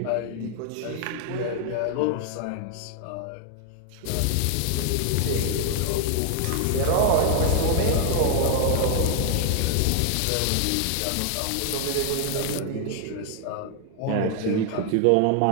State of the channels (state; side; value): different; both; correlation 0.00